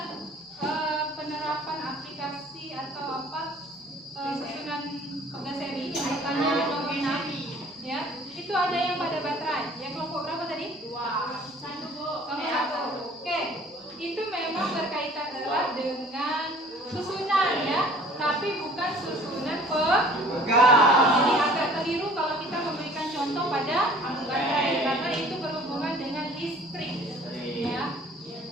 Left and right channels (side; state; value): both; normal; correlation 0.51